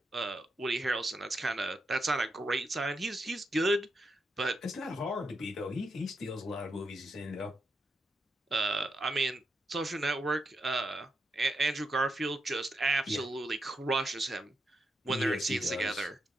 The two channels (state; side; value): normal; both; correlation 0.84